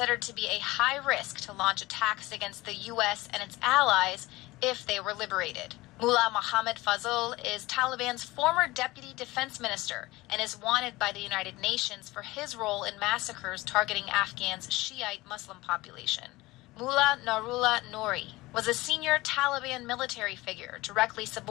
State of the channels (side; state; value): right; quieter; 20.0 dB